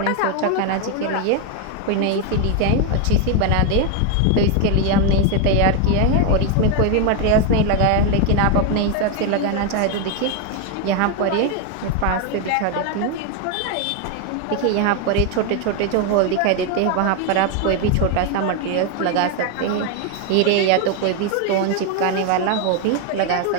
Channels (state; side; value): different; both; correlation 0.01